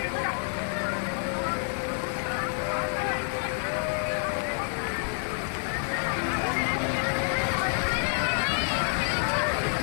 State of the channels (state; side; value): silent; right; 58 dB below the other